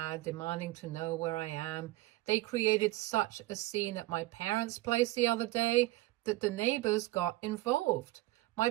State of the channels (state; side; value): quieter; left; 18.3 dB